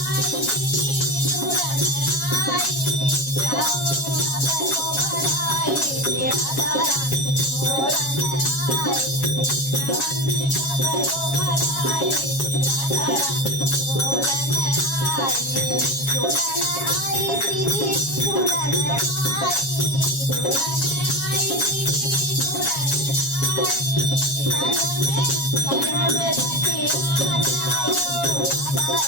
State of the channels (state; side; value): late; right; 7.3 ms